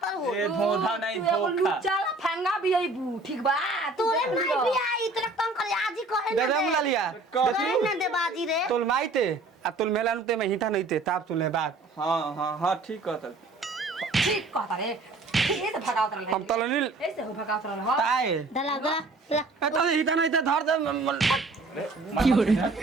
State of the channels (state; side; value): quieter; left; 3.3 dB